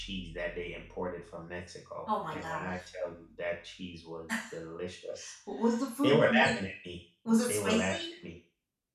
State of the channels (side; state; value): both; identical; correlation 1.00